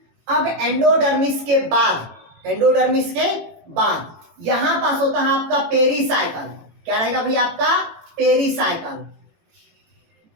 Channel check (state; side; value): late; left; 18 ms